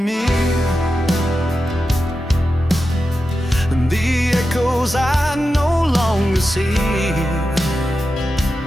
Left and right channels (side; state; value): both; normal; correlation 0.91